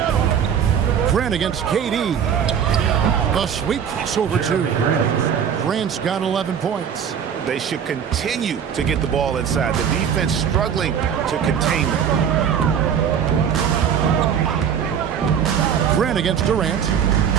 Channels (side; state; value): left; quieter; 8.0 dB